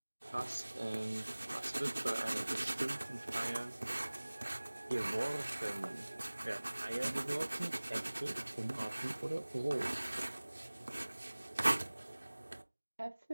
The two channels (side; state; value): both; inverted; correlation -1.00